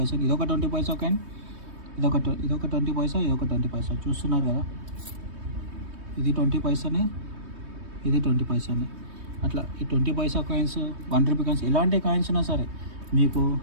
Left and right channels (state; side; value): late; left; 3.2 ms